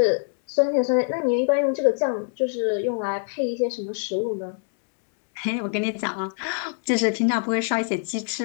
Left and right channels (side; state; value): right; silent; digital silence